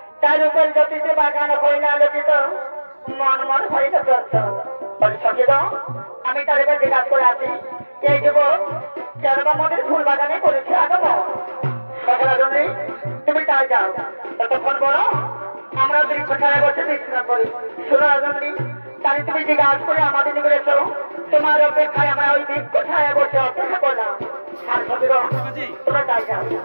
তার উপর জ্যোতিষে বাগান হইলে আলোকিত মন মন হইতে চলত সচিত আমি তার উপর জিজ্ঞাসা করে আছি এই যুবক কেরবা মনের ফুল বাগানে করেছে আগমন রাজনী তুমি তাই যাও ততক্ষণ বলো আমরা বৃক্ষ ছায়া বসে বিশ্রাম করি শোনো রাজনী তাই তুমি জিজ্ঞাসা করে আমাদের নিকটে এসো তোমার অপেক্ষায় আমরা ওই বৃক্ষ ছায়া বসে অপেক্ষা করলাম আর সচিত তোমরা তাই যাও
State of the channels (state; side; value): inverted; both; correlation -1.00